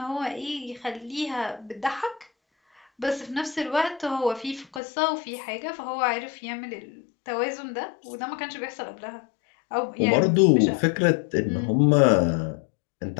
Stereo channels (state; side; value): drops out; right; at 4.8 s